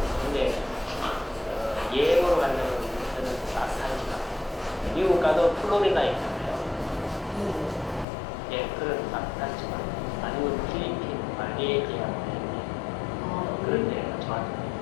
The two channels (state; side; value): drops out; right; at 8.1 s